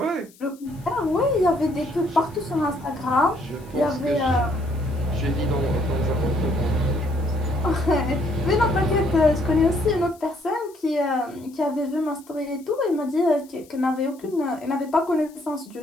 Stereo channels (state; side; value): noise; left; hiss, 26 dB below the sound